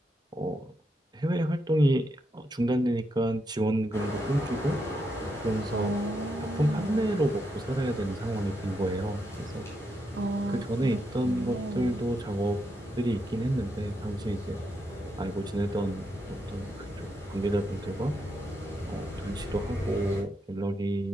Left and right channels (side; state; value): both; normal; correlation 0.82